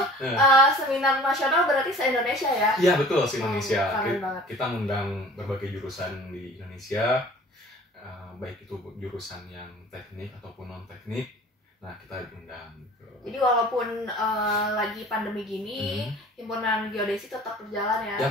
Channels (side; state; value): both; normal; correlation 0.46